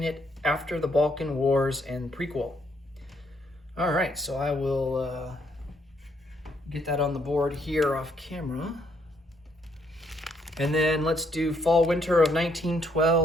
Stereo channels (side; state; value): both; normal; correlation 0.71